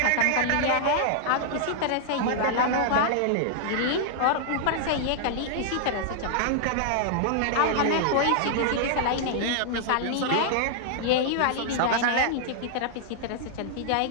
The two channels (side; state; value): both; different; correlation -0.01